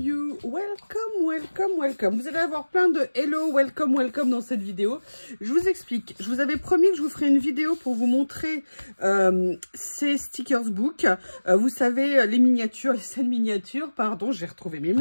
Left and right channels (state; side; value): inverted; both; correlation -1.00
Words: welcome, welcome, welcome. Vous allez avoir plein de hello, welcome, welcome dans cette vidéo. Je vous explique. Je vous avais promis que je vous ferai une vidéo pour vous montrer ces stickers book. Vous savez, les miniatures, les scènes miniatures, pardon, j'ai retrouvé mes